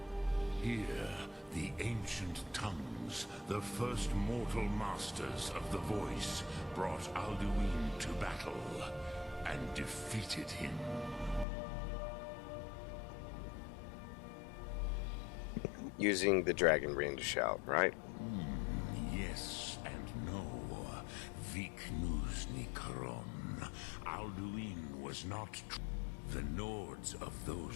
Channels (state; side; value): drops out; right; at 11.5 s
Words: Here, the ancient tongues, the first mortal masters of the voice, brought Alduin to battle and defeated him. Using the dragon ring to shout, right? Yes and no. Viknus Nikaron. Alduin was not the Nords of